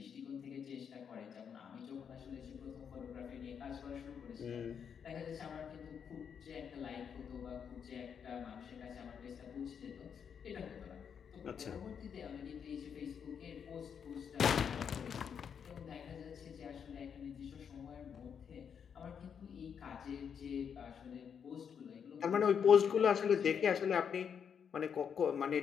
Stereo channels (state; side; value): quieter; right; 7.4 dB